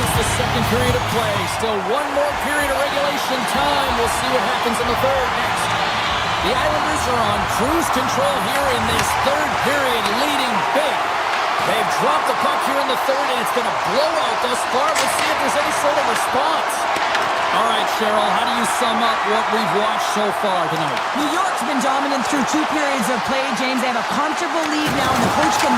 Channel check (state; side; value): identical; both; correlation 1.00